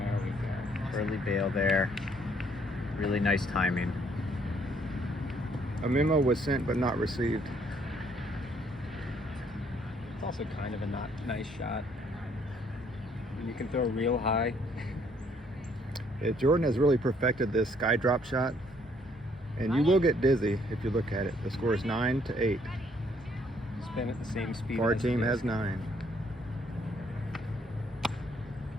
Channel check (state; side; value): normal; both; correlation 0.66